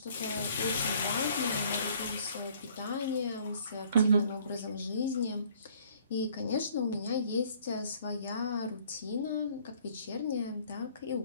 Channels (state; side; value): inverted; both; correlation -0.58